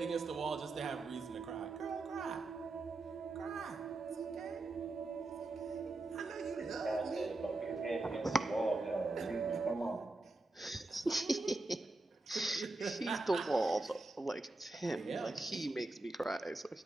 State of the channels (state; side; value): quieter; left; 3.0 dB